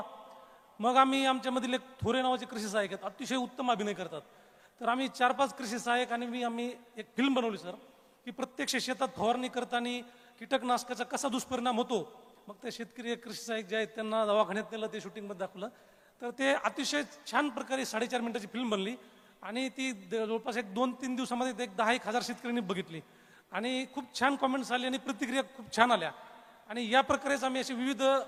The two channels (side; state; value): both; identical; correlation 1.00